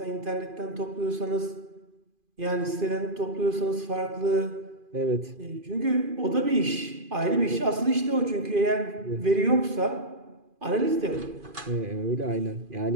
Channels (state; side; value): late; left; 2.5 ms